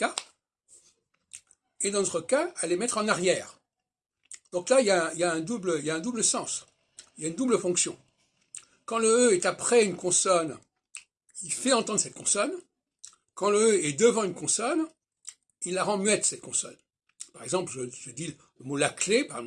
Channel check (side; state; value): both; identical; correlation 1.00